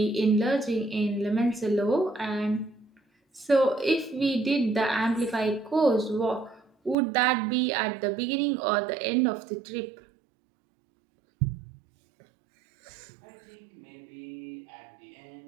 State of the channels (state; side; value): drops out; left; at 7.0 s